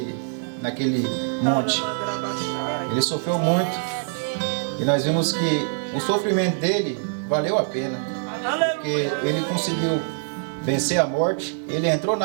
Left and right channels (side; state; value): left; silent; digital silence